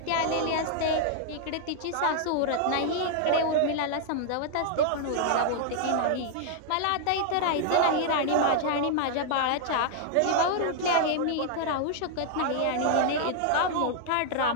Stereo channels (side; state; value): both; different; correlation 0.00